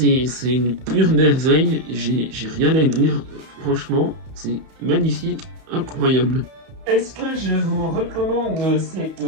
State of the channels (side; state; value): left; late; 31 ms